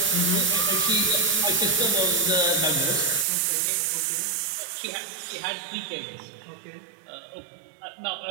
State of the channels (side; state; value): left; drops out; at 3.2 s